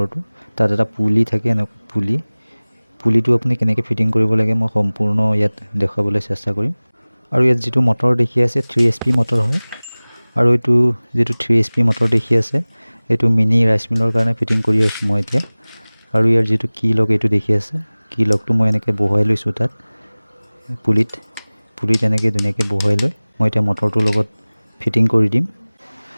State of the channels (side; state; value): both; inverted; correlation -1.00